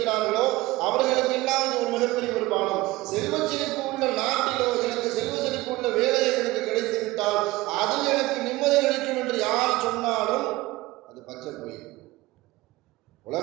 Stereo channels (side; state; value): left; quieter; 19.4 dB